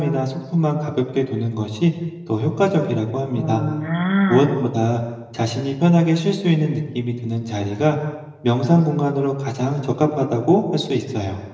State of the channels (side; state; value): both; identical; correlation 1.00